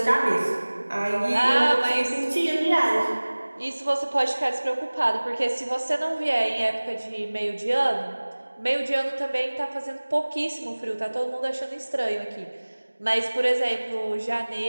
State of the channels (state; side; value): inverted; both; correlation -1.00